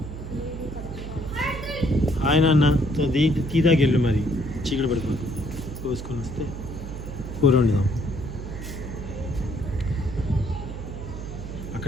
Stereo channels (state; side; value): noise; right; hum, 9 dB below the sound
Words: ఆయన అన్న తీదాకి వెళ్ళు మరి చీకటి పడిపోతుంది కోసుకొని వస్తే కూర వండుదాం